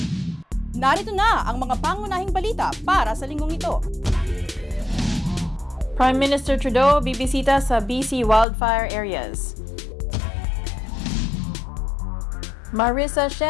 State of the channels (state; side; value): drops out; right; at 8.5 s